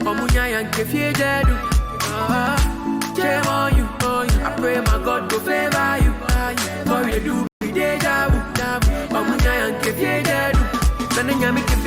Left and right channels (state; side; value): identical; both; correlation 1.00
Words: Omunya yanke fie jedu. Shame on you. I pray my God go favor you. What we dey do be deja vu. Omunya yanke fie jedu. Nana nyami